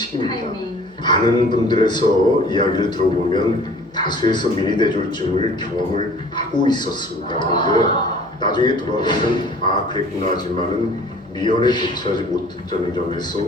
타이밍. 많은 분들에서 이야기를 들어보면 다수에서 미니 뇌졸중을 경험을 하고 있었습니다. 그런데 나중에 돌아보면 그랬구나 하지만은 미연에 도취하지 못했다는 점에서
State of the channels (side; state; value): left; noise; hum, 28 dB below the sound